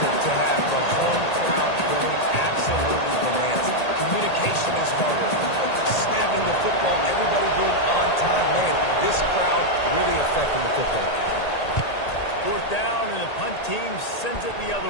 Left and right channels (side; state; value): right; late; 1.8 ms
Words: to have the home crowd going absolutely bananas? Communication is harder. But they're snapping the football, everybody being on time. Man, this crowd really affecting the football. 4th down, and the punt team sends it the